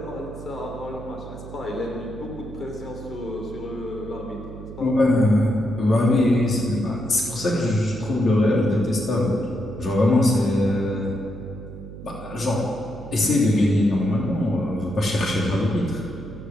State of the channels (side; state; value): right; noise; hum, 13 dB below the sound